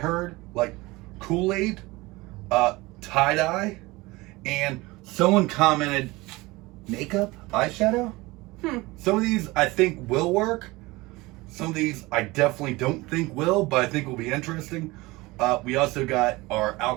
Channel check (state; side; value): quieter; left; 21.7 dB